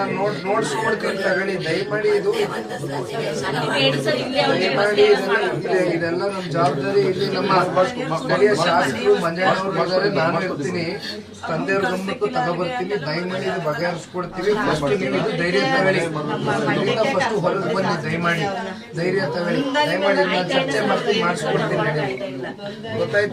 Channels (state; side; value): identical; both; correlation 1.00